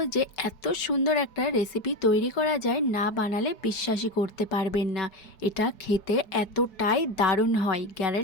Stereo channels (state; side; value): late; right; 4.7 ms